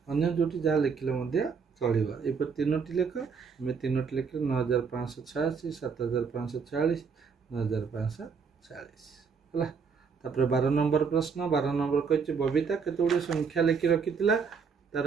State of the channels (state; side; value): quieter; left; 5.8 dB